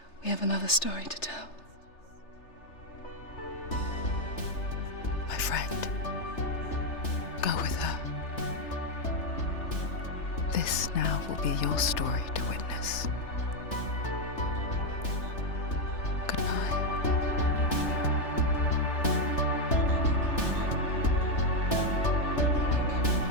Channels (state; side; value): late; right; 3.3 ms